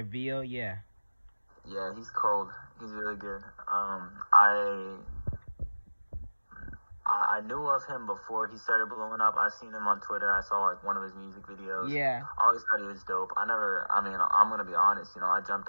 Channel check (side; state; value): both; inverted; correlation -1.00